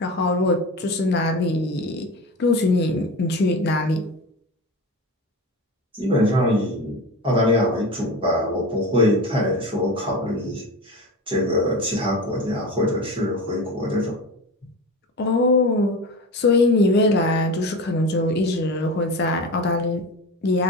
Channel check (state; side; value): normal; both; correlation 0.28